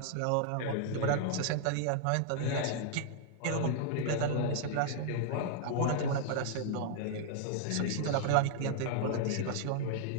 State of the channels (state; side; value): different; both; correlation -0.01